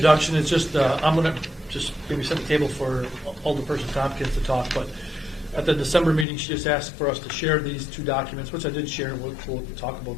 It's just, I'm going to just maybe set the table for Alderperson Tompkins to talk, but at the December meeting, she just asked for us to share these 2 documents, which I did share. We'll talk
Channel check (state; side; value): drops out; right; at 6.2 s